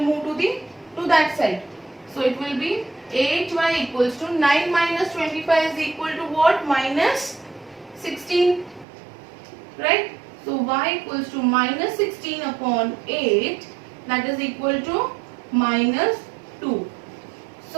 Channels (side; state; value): left; drops out; at 8.8 s